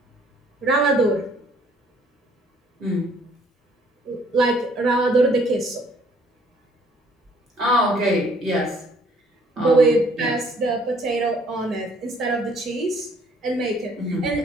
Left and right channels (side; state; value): both; normal; correlation 0.61